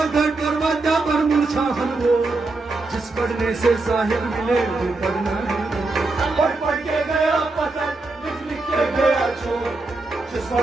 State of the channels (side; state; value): left; quieter; 3.3 dB